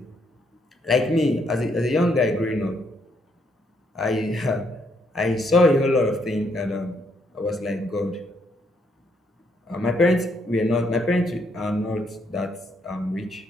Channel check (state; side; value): normal; both; correlation 0.73